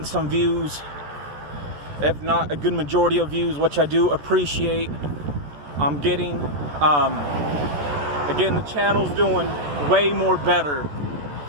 some views, if not a good majority of views, which I do appreciate. I'm getting, again, the channel's doing way more better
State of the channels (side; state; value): left; late; 14 ms